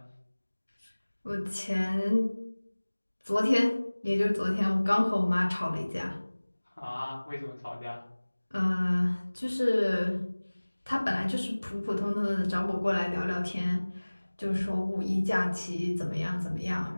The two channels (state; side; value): inverted; both; correlation -1.00